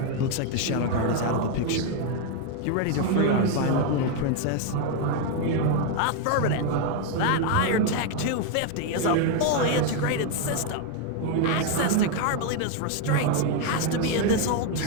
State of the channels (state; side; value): different; both; correlation 0.01